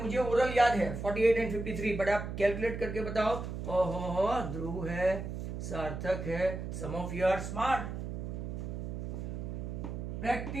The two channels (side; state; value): right; noise; hum, 5 dB below the sound